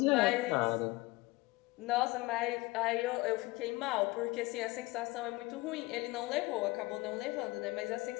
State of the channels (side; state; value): right; quieter; 21.8 dB